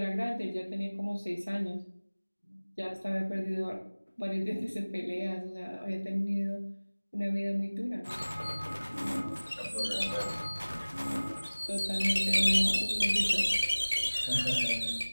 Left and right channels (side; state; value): both; inverted; correlation -1.00